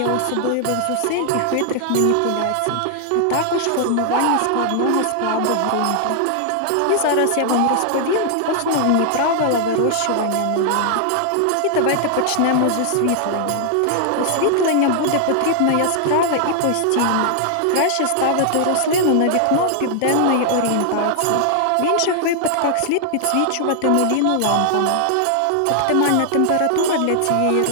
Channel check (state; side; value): different; both; correlation 0.00